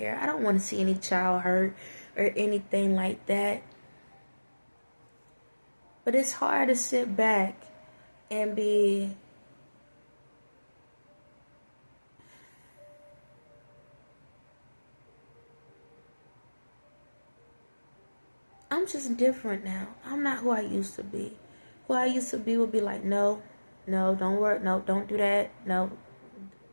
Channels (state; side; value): inverted; both; correlation -1.00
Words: I don't want to see any child hurt or anything like that. But it's hard to sit back and be I'm just different now. I'm not who I used to be. Who I used to be would be like, no, don't work, no, don't do that, no.